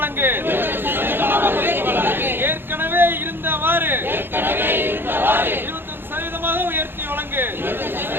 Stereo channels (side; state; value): left; late; 0.10 ms